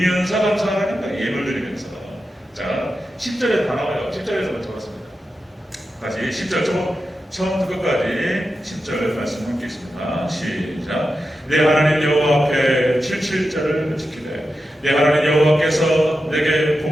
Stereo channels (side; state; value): both; normal; correlation 0.90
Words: 감사하라는 거예요. 예물 드리면서. 자, 10절에 다 나와요. 10절에서 먼저 봤습니다. 다시 10절 처음부터 끝까지 10절 말씀 함께 있습니다. 시작. 내 하나님 여호와 앞에 77절을 지키되 내 하나님 여호와께서 내게